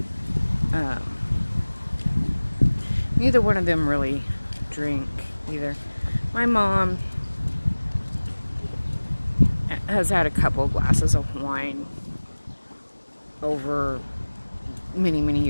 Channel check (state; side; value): inverted; both; correlation -1.00